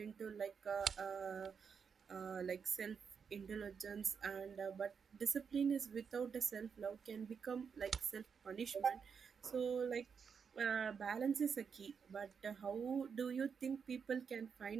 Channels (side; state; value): left; quieter; 6.3 dB